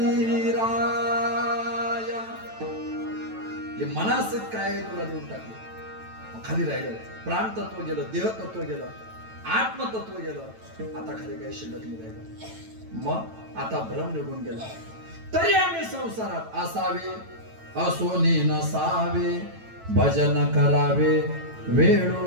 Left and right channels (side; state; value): left; late; 9.1 ms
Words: राया. हे मनासहित काय आहे तुला देऊन टाकलं. खाली राहिलं प्राण तत्व गेलं, देह तत्व गेलं, आत्मतत्व गेलं. आता खाली काही शिल्लक नाही राहिलं. मग आता भ्रम निघून गेला. तरी आम्ही संसारात असावे, असोनी नसावे, भजन करावे